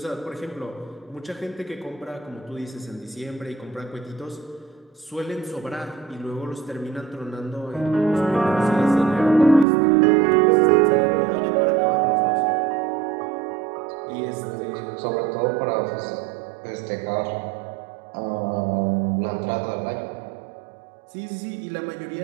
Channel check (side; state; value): left; drops out; at 9.7 s